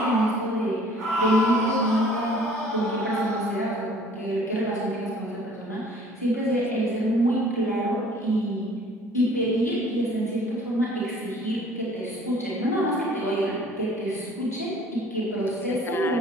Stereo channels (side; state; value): both; normal; correlation 0.53